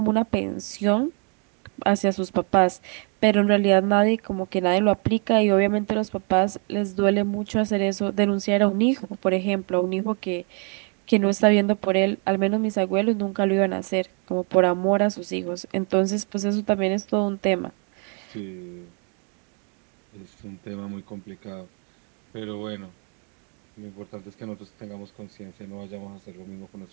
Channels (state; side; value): quieter; left; 39.0 dB